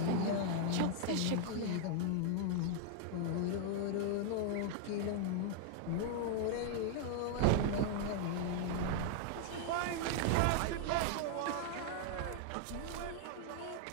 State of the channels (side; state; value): both; different; correlation 0.00